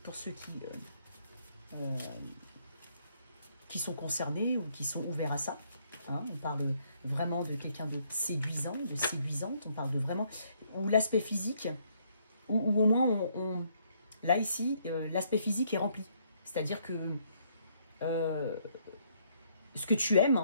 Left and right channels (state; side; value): inverted; both; correlation -0.69